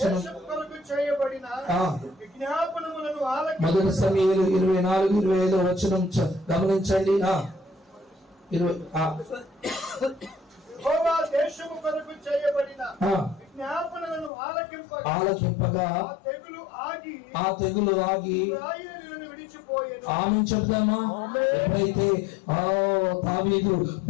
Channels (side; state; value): right; drops out; at 14.3 s